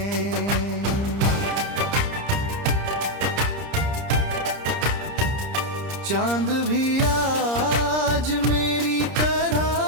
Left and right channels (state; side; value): late; left; 30 ms